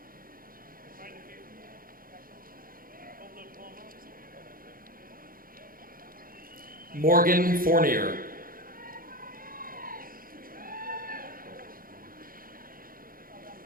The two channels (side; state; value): left; late; 0.41 ms